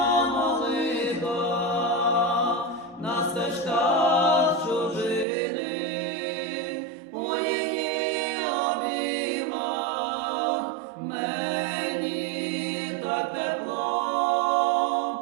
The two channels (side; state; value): left; drops out; at 5.2 s